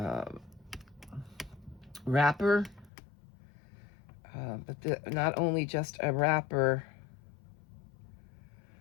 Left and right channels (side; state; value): right; drops out; at 2.9 s